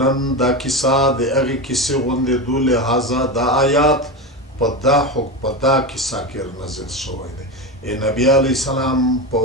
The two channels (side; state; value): both; normal; correlation 0.18